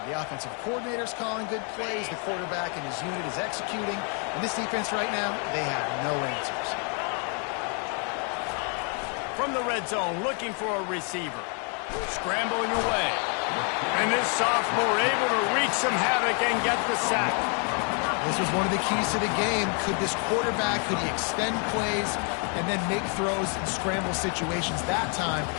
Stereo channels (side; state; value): right; quieter; 39.1 dB